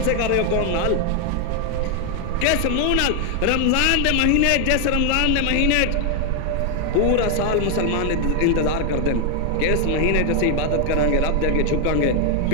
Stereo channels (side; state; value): both; different; correlation 0.01